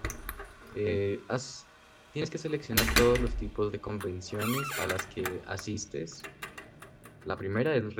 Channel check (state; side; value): identical; both; correlation 1.00